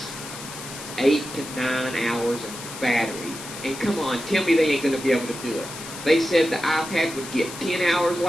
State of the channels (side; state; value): left; noise; hiss, 11 dB below the sound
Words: 8 to 9 hours of battery. And come on, tell me they ain't going to be able to do it. They said the iPad would get 10 hours